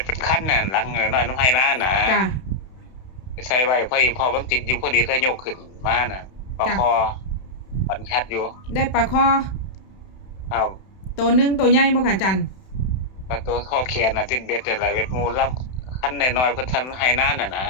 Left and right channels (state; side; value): late; right; 31 ms